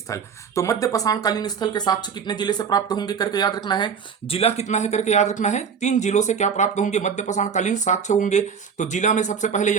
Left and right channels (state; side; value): quieter; left; 6.5 dB